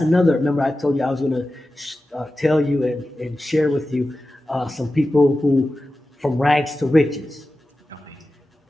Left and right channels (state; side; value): normal; both; correlation 0.94